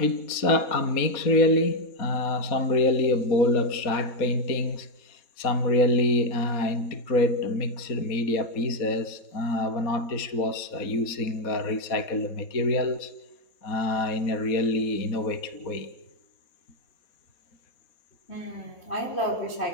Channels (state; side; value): late; right; 4.1 ms